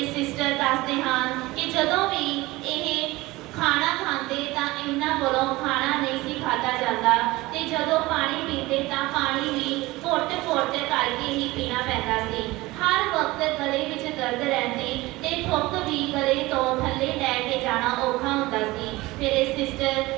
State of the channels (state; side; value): quieter; left; 20.1 dB